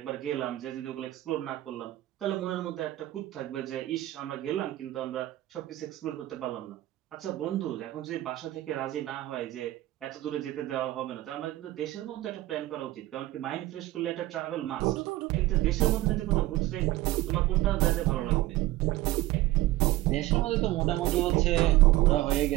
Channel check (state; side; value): quieter; left; 16.8 dB